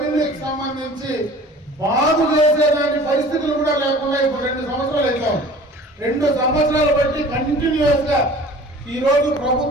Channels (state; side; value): normal; both; correlation 0.45